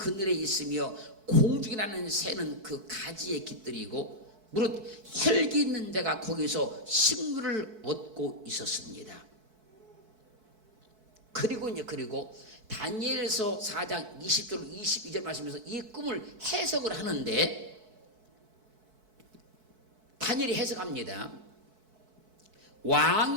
있으며 공중에 나는 새는 그 가지에 깃들이고 무릇 혈기 있는 자가 거기서 식물을 얻고 있었습니다. 그리고 다니엘서 4장 20절 22절 말씀에서 이 꿈을 해석을 하는데 다니엘이 해석합니다.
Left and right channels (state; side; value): late; left; 4.6 ms